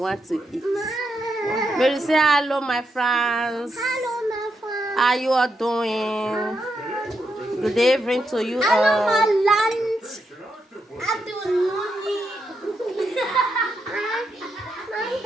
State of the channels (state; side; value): normal; both; correlation 0.82